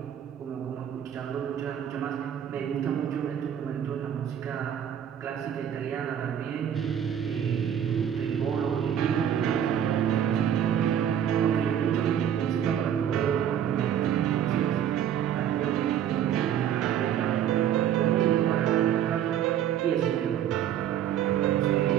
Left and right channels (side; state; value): left; quieter; 9.7 dB